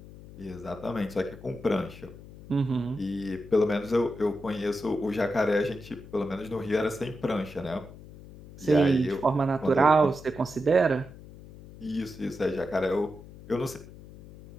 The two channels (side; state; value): left; noise; hum, 17 dB below the sound